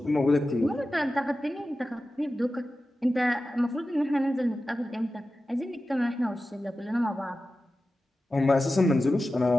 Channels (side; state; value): both; normal; correlation 0.94